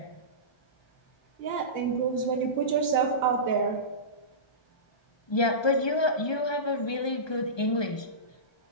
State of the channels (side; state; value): right; late; 1.2 ms